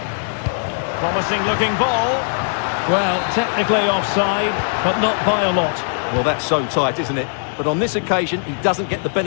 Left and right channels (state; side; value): silent; right; 60 dB below the other